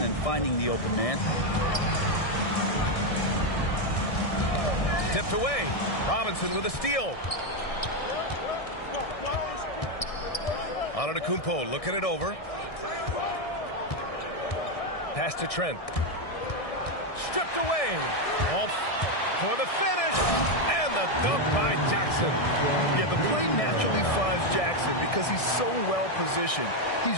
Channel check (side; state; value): right; late; 1.6 ms